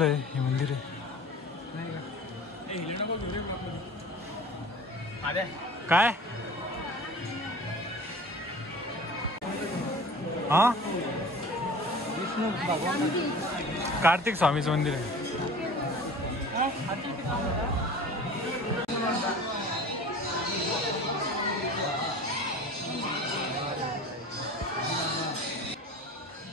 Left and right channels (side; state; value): both; normal; correlation 0.40